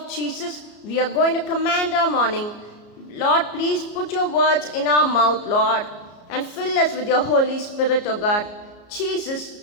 Jesus, we are going to command our morning. Lord, please put your words in our mouth, Lord, and fill us with your Holy Spirit, O God.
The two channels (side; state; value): right; late; 33 ms